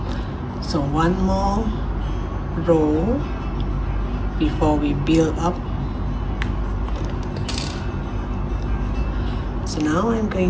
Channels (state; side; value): identical; both; correlation 1.00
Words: So one more row before we build up. So now I'm